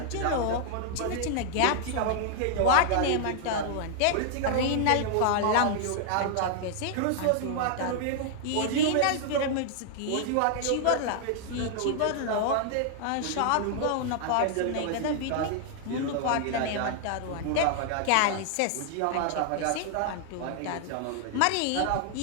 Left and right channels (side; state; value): both; different; correlation -0.01